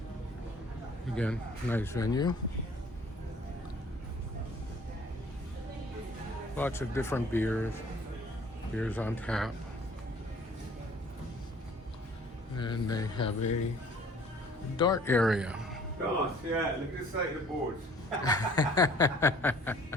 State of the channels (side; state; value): both; normal; correlation 0.53